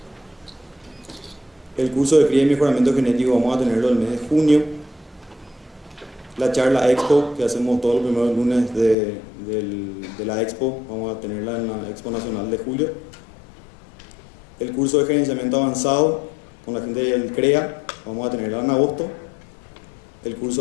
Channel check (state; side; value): drops out; right; at 9.0 s